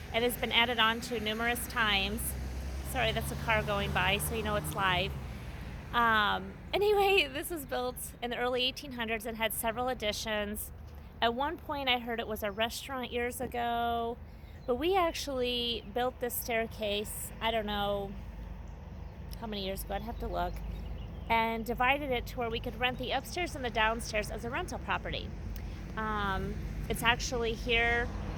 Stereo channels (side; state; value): both; identical; correlation 1.00